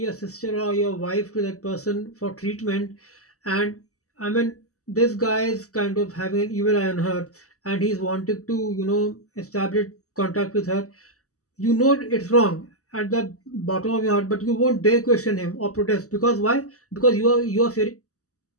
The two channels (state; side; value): late; right; 0.66 ms